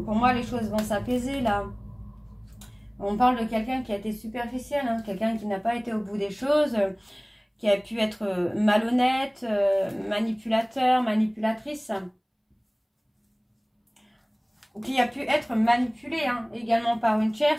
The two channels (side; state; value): both; identical; correlation 1.00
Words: pour moi, les choses vont s'apaiser là. On parle de quelqu'un qui a été superficiel, hein, quelqu'un qui n'a pas été au bout des choses, qui a pu être malhonnête, manipulateur, manipulatrice. Ou qui a pu être manipulé hein, également par une